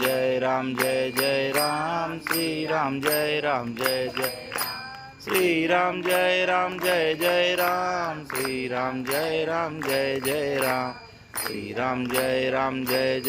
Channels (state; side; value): identical; both; correlation 1.00